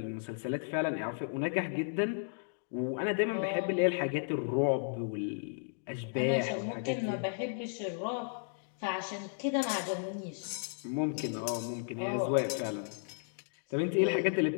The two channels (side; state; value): right; silent; digital silence